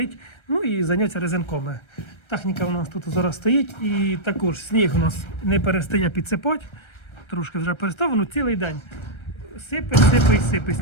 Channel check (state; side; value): late; right; 1.3 ms